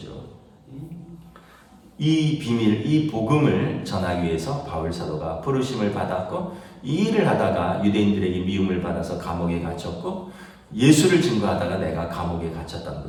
이 비밀, 이 복음을 전하기 위해서 바울 사도가 부르심을 받았고 이 일을 하다가 유대인들에게 미움을 받아서 감옥에 갇혔고 예수를 증거하다가 내가 감옥에 갇혔다는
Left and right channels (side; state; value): both; identical; correlation 1.00